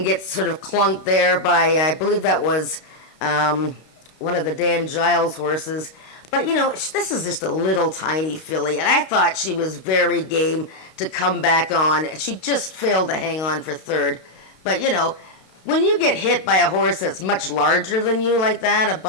gets sort of clunked there by, I believe that was one of the Dan Giles horses. But, you know, this is just a little tiny filly, and I thought she was very game to come back on. She just failed to hang on for 3rd. But, you know, when you get hit by a horse that's much larger than you like that, a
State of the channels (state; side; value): late; right; 32 ms